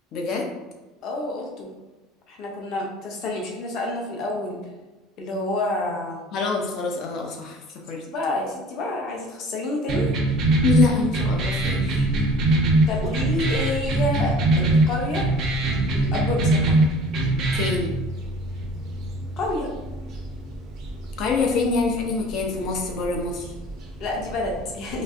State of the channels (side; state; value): both; normal; correlation 0.48